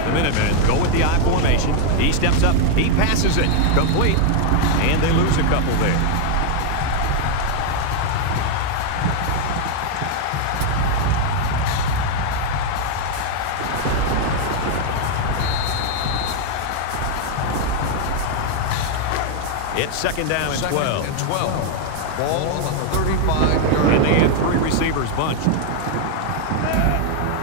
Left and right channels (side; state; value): both; different; correlation 0.00